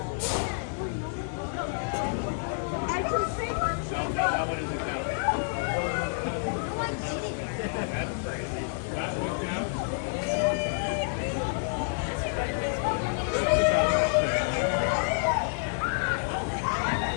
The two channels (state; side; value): silent; right; digital silence